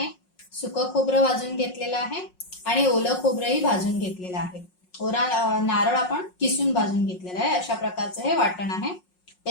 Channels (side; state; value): right; late; 5.5 ms